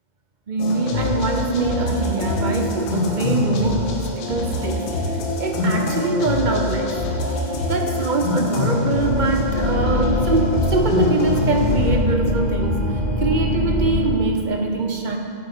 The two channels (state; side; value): late; left; 2.2 ms